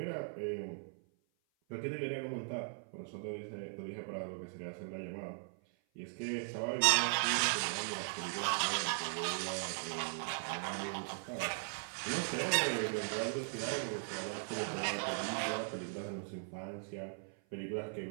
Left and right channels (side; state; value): left; silent; 52 dB below the other